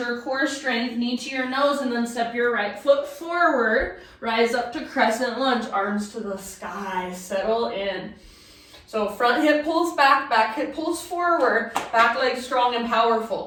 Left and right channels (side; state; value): both; identical; correlation 1.00